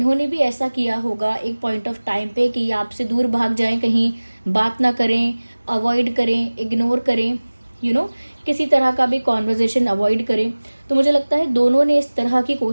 भी ऐसा किया होगा एक पॉइंट ऑफ टाइम पे कि आपसे दूर भाग जाएं, कहीं बात ना करें, अवॉइड करें, इग्नोर करें, किसी तरह का भी कॉन्वर्जेशन अवॉइड करें। तो मुझे लगता है दोनों ने इस तरह की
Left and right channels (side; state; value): both; inverted; correlation -1.00